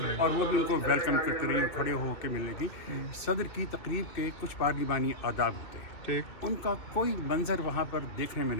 اور وہ بھی ان کو ویلکم کرتی رہی، کھڑے ہو کے ملنے کی. صدر کی تقریب کے کچھ پارلیمانی آداب ہوتے ہیں، ان کا کوئی منظر وہاں پر دیکھنے میں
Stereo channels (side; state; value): right; late; 2.8 ms